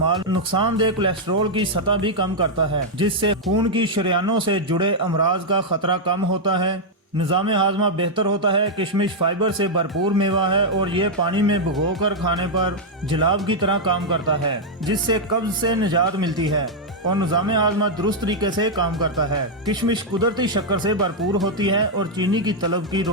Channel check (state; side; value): normal; both; correlation -0.03